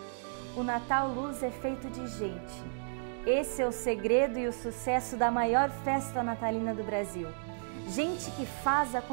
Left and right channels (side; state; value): left; silent; digital silence